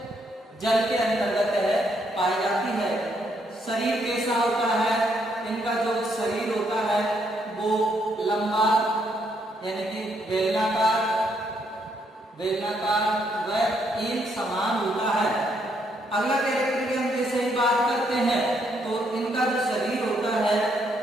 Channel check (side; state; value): both; normal; correlation 0.73